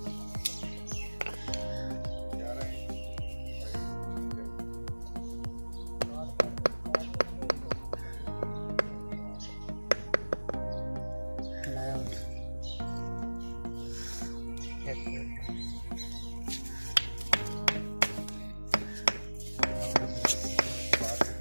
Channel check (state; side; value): inverted; both; correlation -1.00